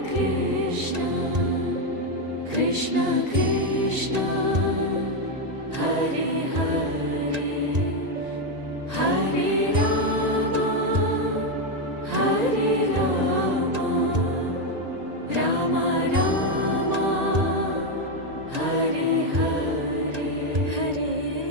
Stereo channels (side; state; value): left; late; 1.8 ms